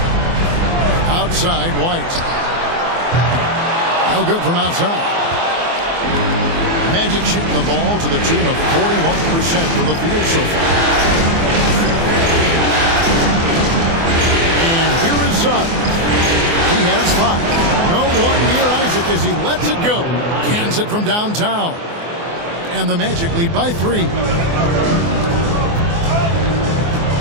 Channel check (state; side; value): late; left; 24 ms